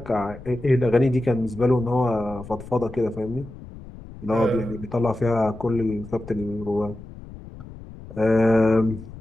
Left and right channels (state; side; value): noise; left; rumble, 16 dB below the sound